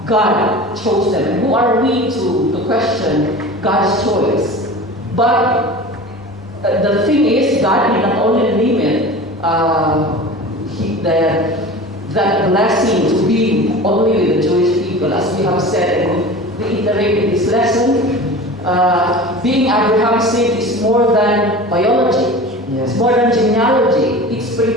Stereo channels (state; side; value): normal; both; correlation 0.36